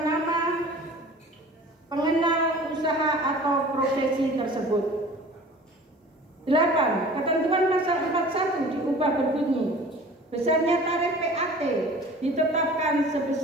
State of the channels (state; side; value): normal; both; correlation 0.44